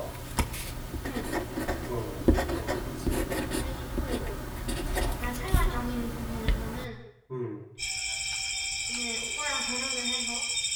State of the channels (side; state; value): both; identical; correlation 1.00